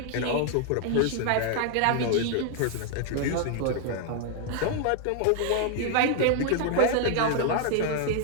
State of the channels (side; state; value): both; different; correlation 0.00